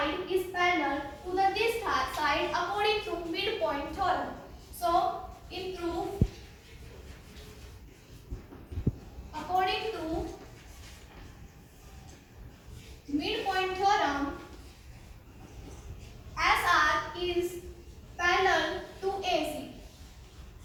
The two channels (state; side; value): identical; both; correlation 1.00